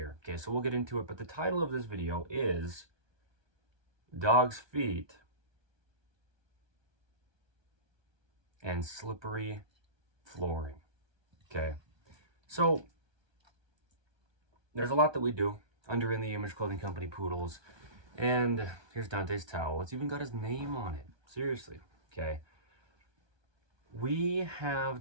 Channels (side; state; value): left; late; 1.2 ms